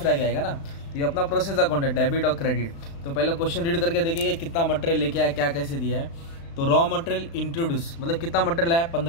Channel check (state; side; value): late; right; 36 ms